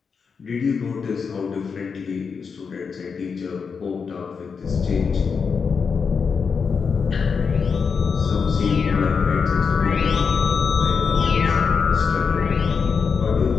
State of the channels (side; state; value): right; quieter; 5.7 dB